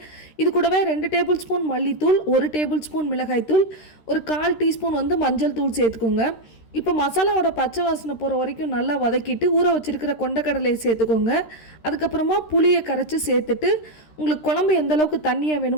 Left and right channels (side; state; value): right; late; 13 ms